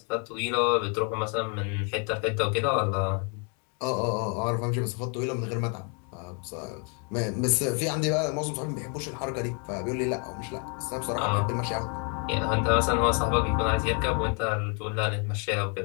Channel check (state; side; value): quieter; right; 37.9 dB